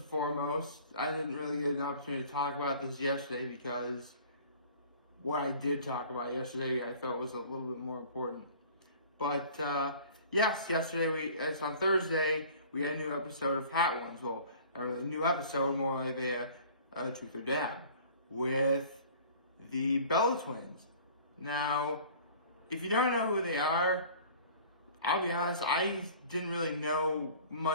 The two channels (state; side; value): inverted; both; correlation -0.47